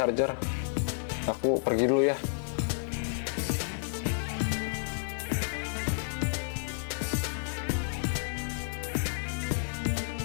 Aku pergi dulu ya.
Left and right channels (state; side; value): silent; right; digital silence